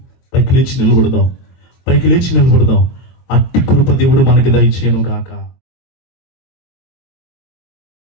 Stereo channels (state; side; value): late; right; 23 ms